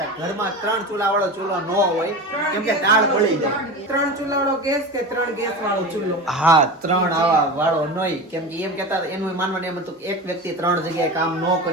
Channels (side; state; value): both; normal; correlation 0.28